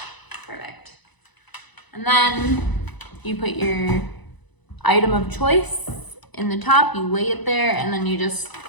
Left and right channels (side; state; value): right; late; 1.0 ms